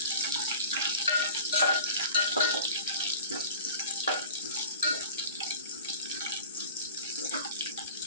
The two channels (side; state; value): both; inverted; correlation -0.41